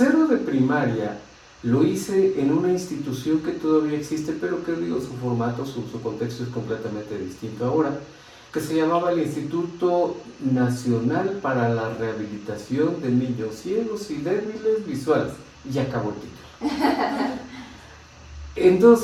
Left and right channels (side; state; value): both; identical; correlation 1.00